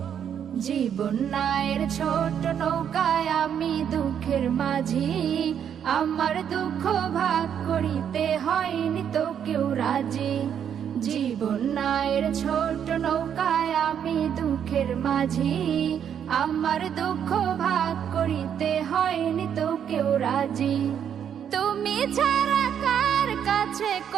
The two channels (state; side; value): quieter; left; 8.6 dB